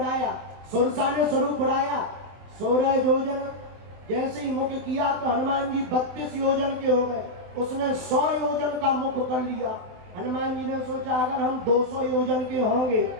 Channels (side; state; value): left; late; 24 ms